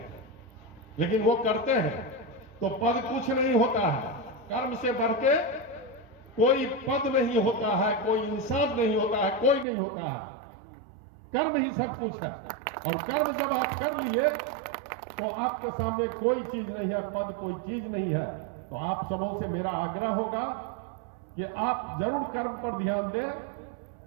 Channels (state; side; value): drops out; left; at 9.7 s